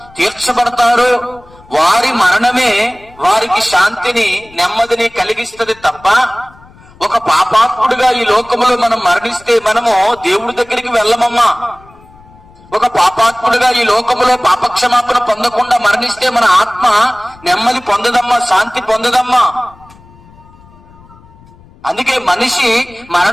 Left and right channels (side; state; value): left; noise; rumble, 25 dB below the sound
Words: తీర్చబడతారో వారి మరణమే వారికి శాంతిని నెమ్మదిని కలిగిస్తుంది తప్ప, ఒక పాపాత్ముడుగా ఈ లోకంలో మనం మరణిస్తే మనము దేవుడి దగ్గరికి వెళ్ళమమ్మా. ఒక పాపాత్ముడుగా ఈ లోకంలో పాపక్షమాపణ పొందకుండా మరణిస్తే మన ఆత్మ నెమ్మది పొందదమ్మా, శాంతి పొందదమ్మా. అందుకే మనిషి